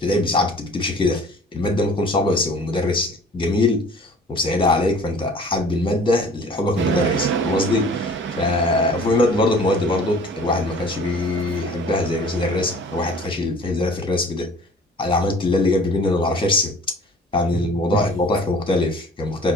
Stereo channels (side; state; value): both; normal; correlation 0.49